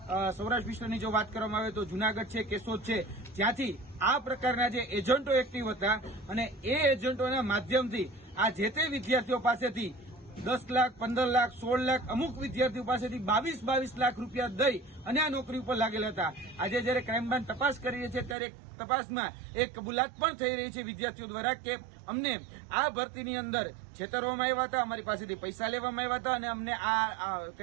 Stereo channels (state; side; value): drops out; left; at 18.4 s